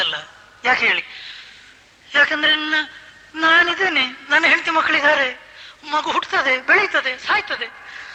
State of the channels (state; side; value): identical; both; correlation 1.00